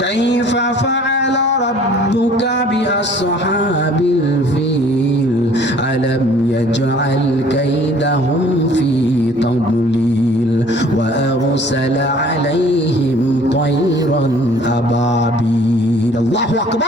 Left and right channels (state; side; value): normal; both; correlation 0.53